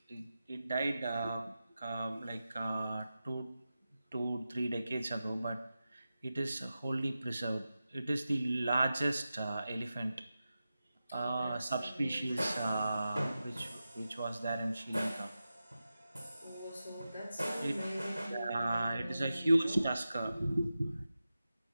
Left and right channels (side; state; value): both; inverted; correlation -0.93